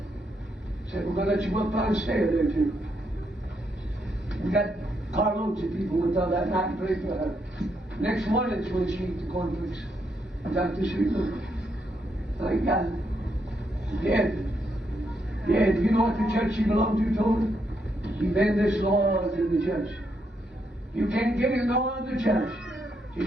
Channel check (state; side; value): normal; both; correlation 0.78